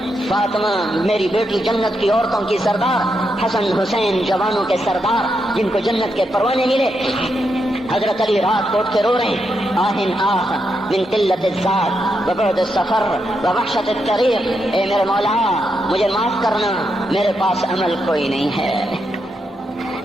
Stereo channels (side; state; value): both; normal; correlation 0.83